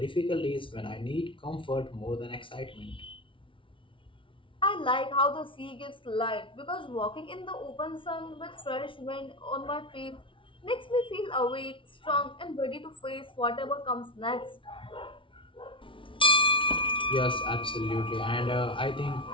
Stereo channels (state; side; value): late; right; 0.25 ms